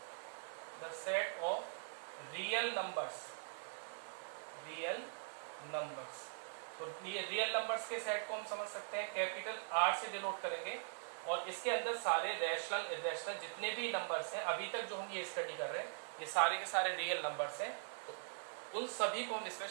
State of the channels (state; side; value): silent; left; digital silence